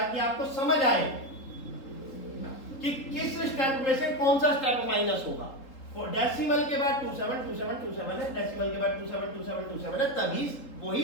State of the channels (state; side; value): late; right; 3.8 ms